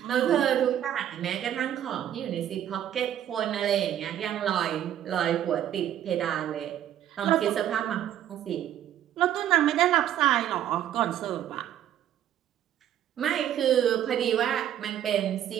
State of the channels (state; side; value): quieter; left; 11.0 dB